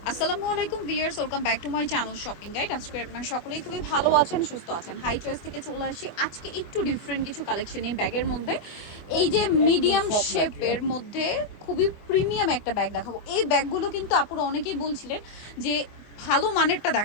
আসসালামু আলাইকুম viewers, welcome back to my channel shopping guide. আজকে আপনারা সকলেই খুবই ভালো আছেন, সুস্থ আছেন। হাই চয়েস থেকে চলে আসি আজকে একটু ডিফারেন্ট কিছু কালেকশন এই ব্যাগের মধ্যে। এই যে মিডিয়াম শেপের মধ্যে খুবই প্রিমিয়াম একটা ব্যাগ দেখাবো। এই ব্যাগগুলো কিন্তু আপুরা অনেকেই বলছিলেন যে ভালো মানেরটা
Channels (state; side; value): late; right; 24 ms